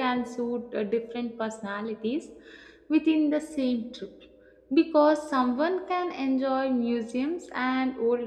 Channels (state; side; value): identical; both; correlation 1.00